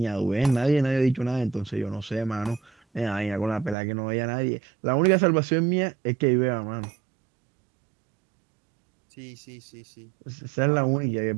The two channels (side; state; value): left; drops out; at 3.8 s